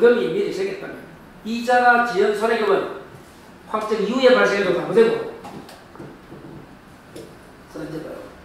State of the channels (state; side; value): identical; both; correlation 1.00